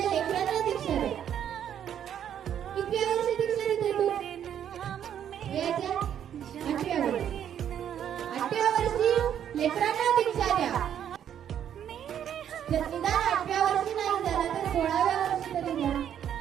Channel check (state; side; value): quieter; left; 9.6 dB